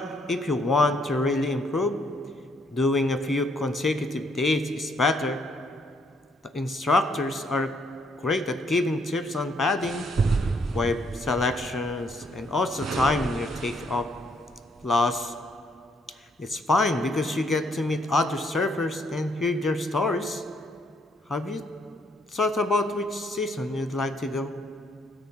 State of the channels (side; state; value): both; normal; correlation 0.70